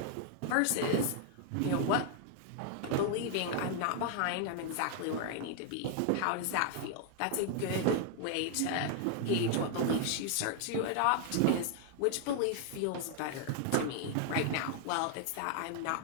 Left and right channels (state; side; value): different; both; correlation 0.00